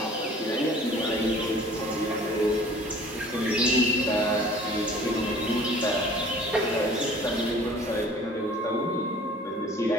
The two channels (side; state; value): both; normal; correlation 0.49